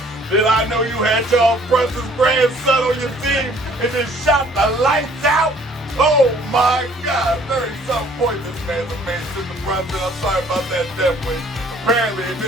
did I know you had Charles Brunson's grandson on your team and just shot the lights out? Oh my God, 30-something points this man's made, Mr. Brunson. I'm sorry about that death wish. Apparently, if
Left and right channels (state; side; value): normal; both; correlation 0.58